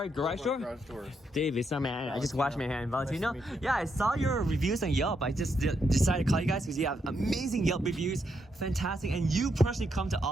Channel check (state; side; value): normal; both; correlation 0.79